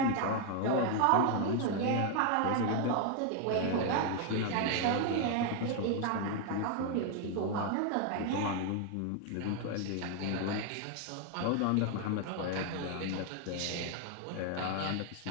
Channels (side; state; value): both; different; correlation 0.00